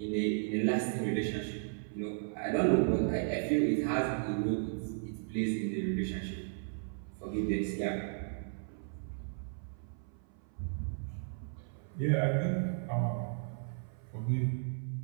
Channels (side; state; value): left; silent; 54 dB below the other